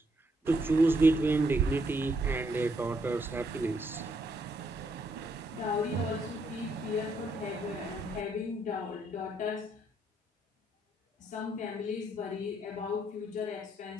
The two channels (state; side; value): normal; both; correlation 0.74